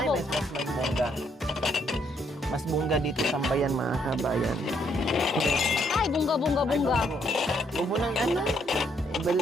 po. Mas bongga. Mas bongga dito sa bayan mga kabayan. Ay, bunga. Huwag nang ano.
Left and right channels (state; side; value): normal; both; correlation 0.71